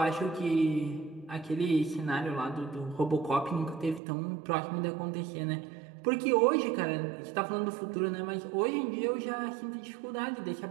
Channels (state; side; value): drops out; left; at 4.0 s